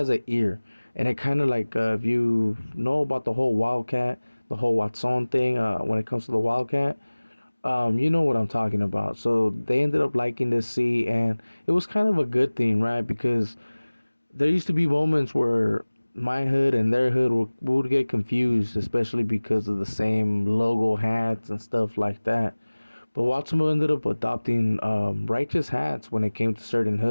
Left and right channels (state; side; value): inverted; both; correlation -1.00